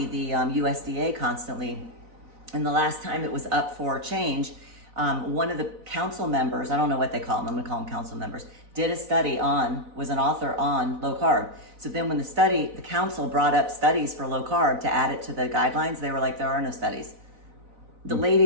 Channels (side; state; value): left; late; 4.0 ms